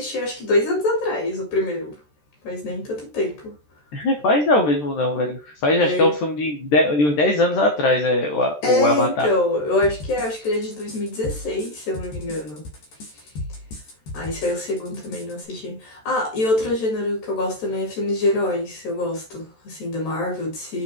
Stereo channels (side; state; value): right; late; 13 ms